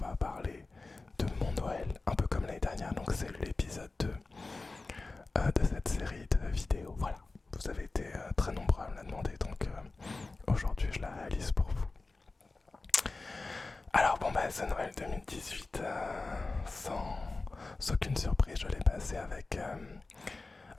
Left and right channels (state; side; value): quieter; right; 3.5 dB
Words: parler de mon Noël, un peu comme l'année dernière, donc c'est l'épisode 2 de cette série de vidéos. Voilà, vous avez été très nombreux à me la demander, donc aujourd'hui je la réalise pour vous. Alors bon bah ce Noël 2018, sans aucune surprise, je l'ai passé avec